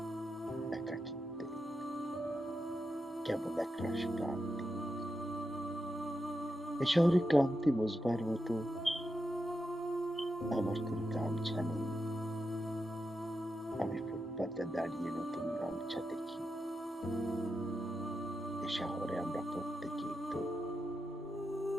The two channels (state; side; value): normal; both; correlation 0.87